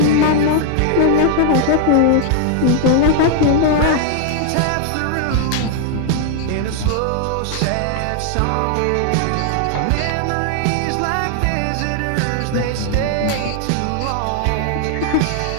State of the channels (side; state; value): both; different; correlation 0.00